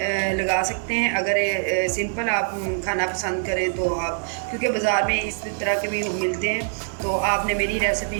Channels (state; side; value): silent; left; digital silence